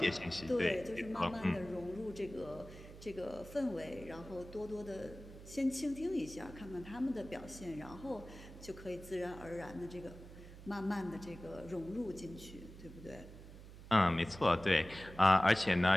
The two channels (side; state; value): right; noise; hum, 16 dB below the sound